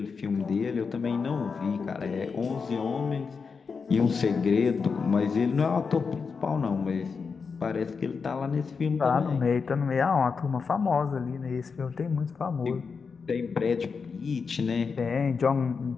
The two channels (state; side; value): quieter; right; 5.3 dB